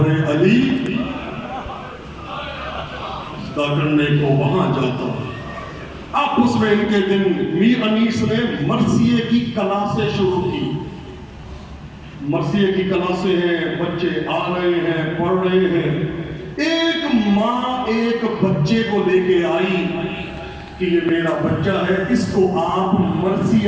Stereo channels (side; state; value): both; identical; correlation 1.00